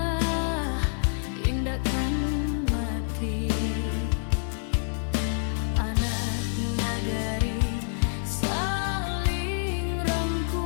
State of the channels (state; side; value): silent; right; digital silence